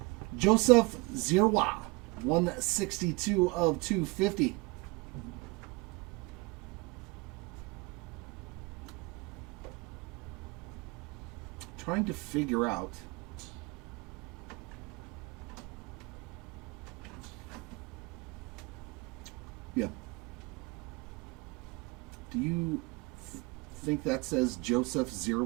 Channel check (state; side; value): quieter; left; 26.0 dB